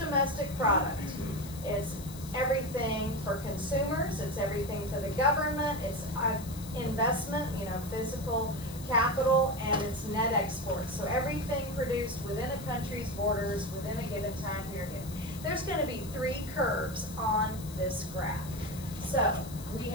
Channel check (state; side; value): noise; left; hiss, 15 dB below the sound